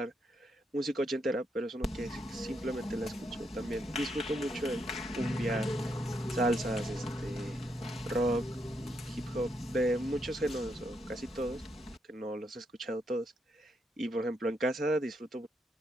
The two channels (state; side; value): normal; both; correlation 0.78